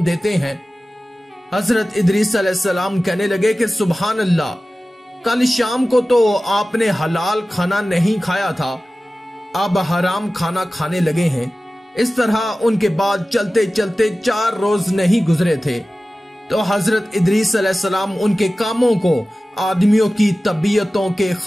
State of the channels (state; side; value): normal; both; correlation 0.96